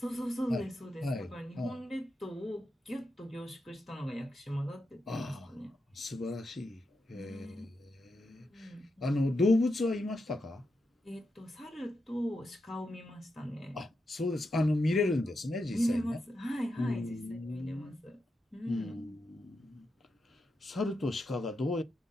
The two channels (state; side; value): normal; both; correlation 0.86